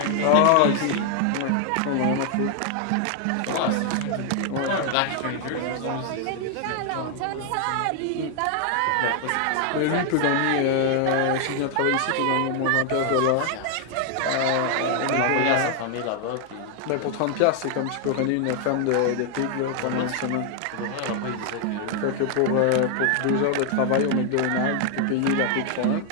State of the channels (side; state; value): both; different; correlation 0.00